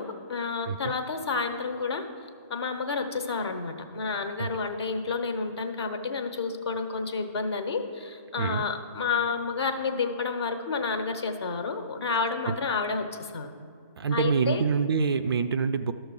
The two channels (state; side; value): inverted; both; correlation -0.46